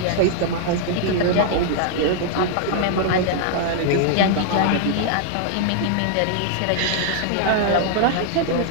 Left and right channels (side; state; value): both; different; correlation -0.01